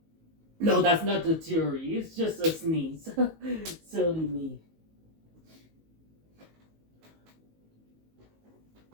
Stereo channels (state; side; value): late; left; 19 ms